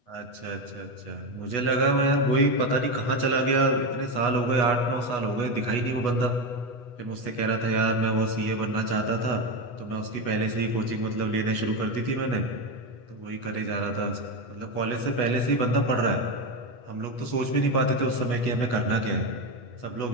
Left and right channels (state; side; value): late; right; 8.2 ms